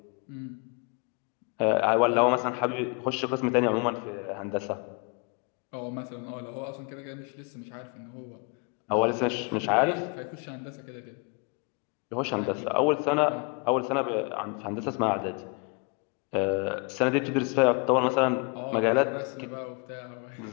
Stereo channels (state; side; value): quieter; right; 33.5 dB